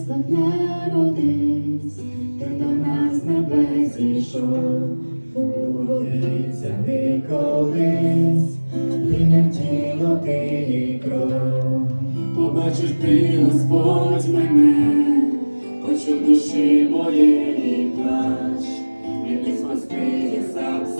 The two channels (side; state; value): both; inverted; correlation -1.00